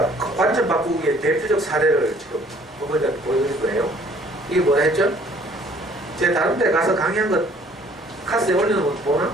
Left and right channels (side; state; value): both; normal; correlation 0.57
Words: 관점 바꾸기의 대표적 사례를 지금 어머니한테 보여드릴 거예요. 이게 뭐라 했죠? 제가 다른 데 가서 강의한 것 카스에 올려놓은 거 보나?